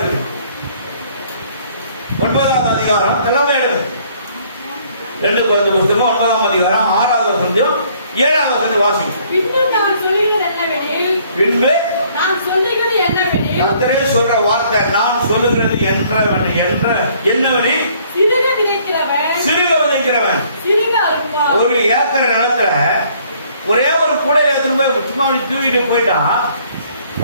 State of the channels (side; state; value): both; inverted; correlation -0.62